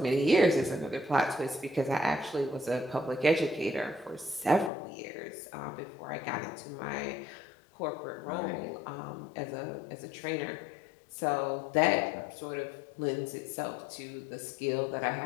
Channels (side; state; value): right; drops out; at 4.7 s